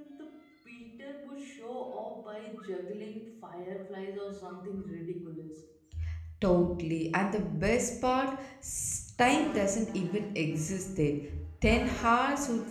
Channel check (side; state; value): both; identical; correlation 1.00